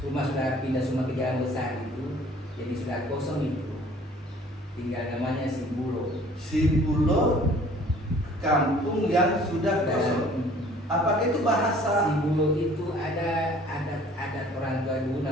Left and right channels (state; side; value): normal; both; correlation 0.53